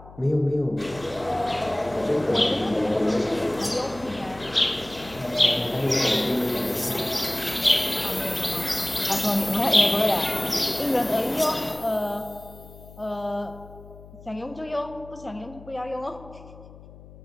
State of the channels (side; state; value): left; noise; hum, 19 dB below the sound